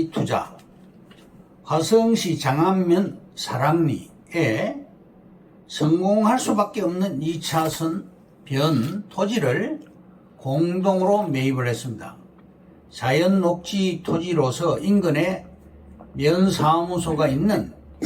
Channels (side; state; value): both; identical; correlation 1.00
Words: 투자. 화성시 장안면 사랑리에 성공할 수밖에 없는 2차선 변 토지를 공동으로 매입을 했습니다. 자연녹지 토지로서 인근에 면사무소가 있는